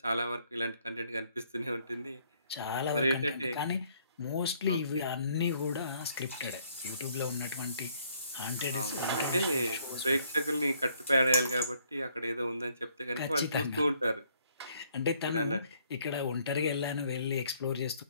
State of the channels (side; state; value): both; inverted; correlation -0.66